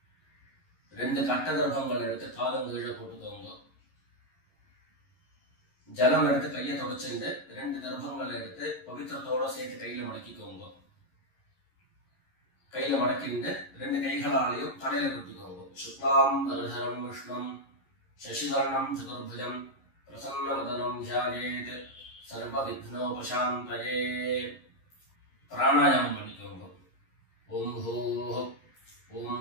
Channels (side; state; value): right; late; 11 ms